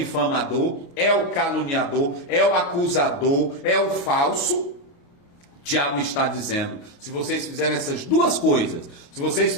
é o caluniador, é o acusador, é o falso. Tiago está dizendo, se vocês fizerem essas 2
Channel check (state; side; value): late; right; 28 ms